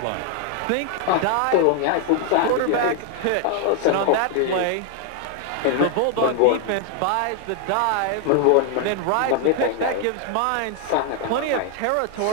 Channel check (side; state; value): both; different; correlation 0.00